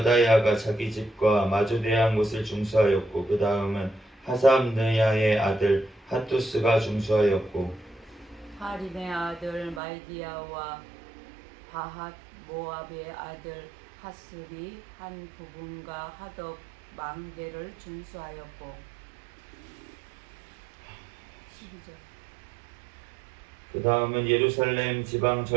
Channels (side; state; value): left; drops out; at 9.8 s